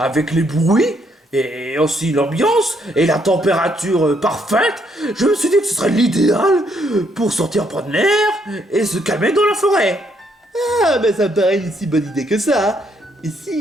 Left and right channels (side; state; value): both; normal; correlation 0.72